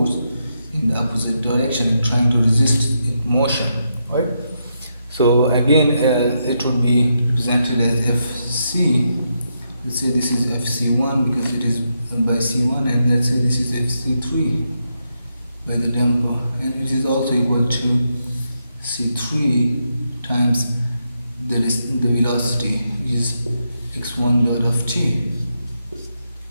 in the opposite direction and trying to resist its motion, right? So again, it would be represented as Fc. Let's say this is Fc1 because it is by c1, and let's say this is Fc3 by the damper, and it is also equal to c3 times the velocity, which is x1 dot of t.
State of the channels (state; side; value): inverted; both; correlation -0.82